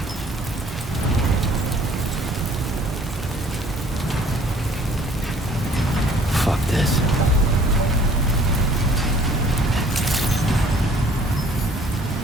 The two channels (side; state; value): both; normal; correlation 0.56